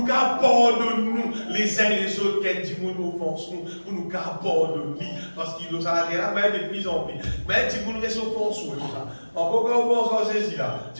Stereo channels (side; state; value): both; inverted; correlation -1.00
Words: pardonner les uns les autres, quand du monde nous offense, pour nous pardonner. Parce qu'il nous a là, mais de plus en plus. Mais du monde reste offense, encore quand on pense en Jésus là,